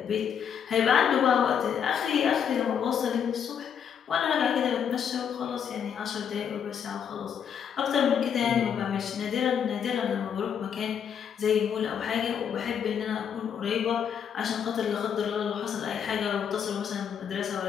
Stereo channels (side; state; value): right; quieter; 8.0 dB